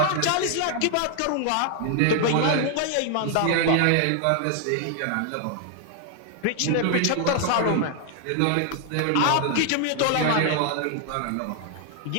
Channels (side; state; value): both; different; correlation 0.00